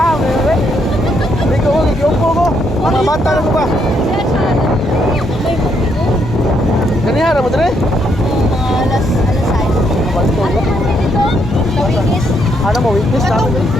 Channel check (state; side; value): normal; both; correlation 0.74